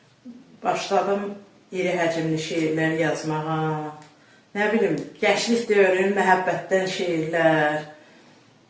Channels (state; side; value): identical; both; correlation 1.00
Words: başladım iri həcmli şeirlər yazmağa. Nə bilim, gənclik dövrünün məhəbbətdən şeirlər,